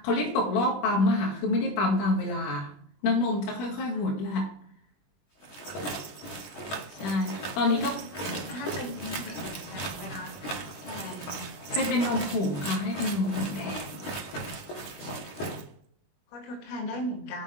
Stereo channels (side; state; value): right; late; 20 ms